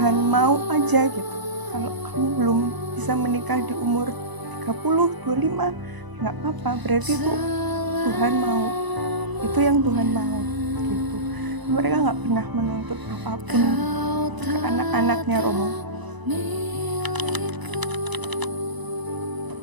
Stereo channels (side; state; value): left; late; 1.0 ms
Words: mau aja gitu. Kalau kamu belum bisa menikah di umur 30, 25, nggak apa-apa, berarti itu Tuhan mau. Itu yang Tuhan mau gitu. Mereka nggak pernah menuntut apapun ke anak-anaknya Romo.